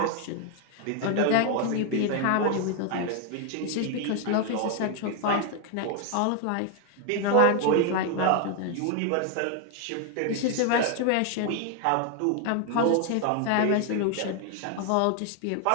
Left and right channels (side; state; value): both; different; correlation 0.01